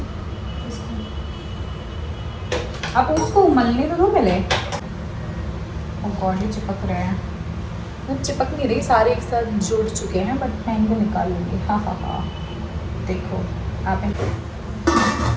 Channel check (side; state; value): both; identical; correlation 1.00